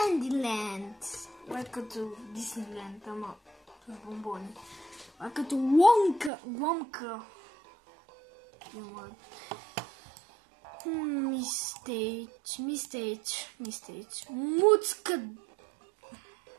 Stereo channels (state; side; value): drops out; left; at 6.3 s